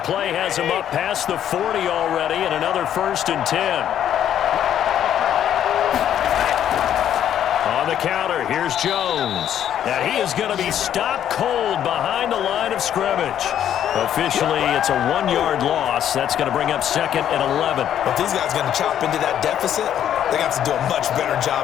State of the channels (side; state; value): right; quieter; 10.2 dB